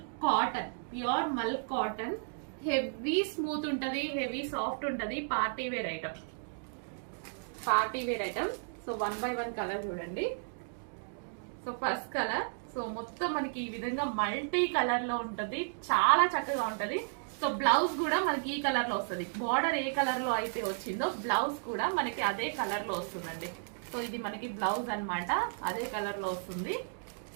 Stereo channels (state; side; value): silent; left; digital silence